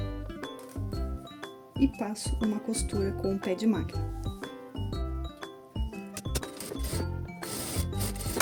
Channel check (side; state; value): both; identical; correlation 1.00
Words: e passo uma costura com o pé de máquina.